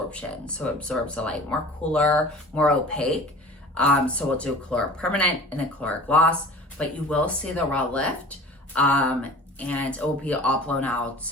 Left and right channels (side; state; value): both; normal; correlation 0.42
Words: So it absorbs the light more cooler, more opaque. So we'll do Color Permanent and then Color Gloss, but you will see the raw lift, and it will be all blown out